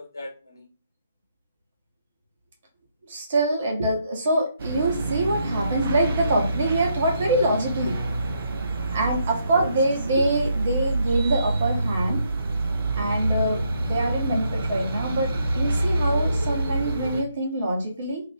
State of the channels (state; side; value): inverted; both; correlation -0.76